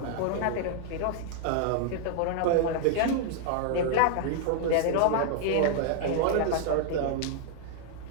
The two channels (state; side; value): different; both; correlation -0.01